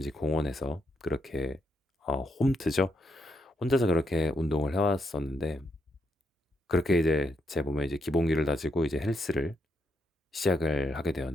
공원에서 그렇게 홈트죠. 혼자서 그렇게 운동을 해왔었는데, 그렇게 이제 제 몸에 이제 기본기를 다지고 이제 헬스를 시작을 하게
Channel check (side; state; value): both; normal; correlation 0.79